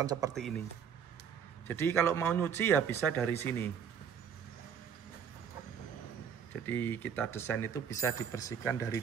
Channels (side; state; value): left; quieter; 7.6 dB